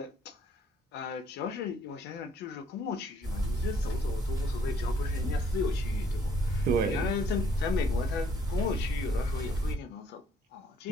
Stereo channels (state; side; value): normal; both; correlation 0.64